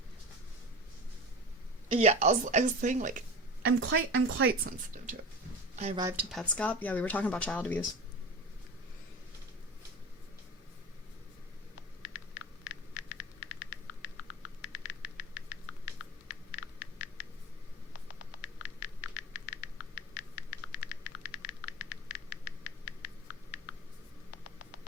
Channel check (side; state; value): both; normal; correlation 0.31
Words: Yeah, I was saying like I'm quite sensitive to it. I arrived to Petscop. Yeah, we were talking about child abuse.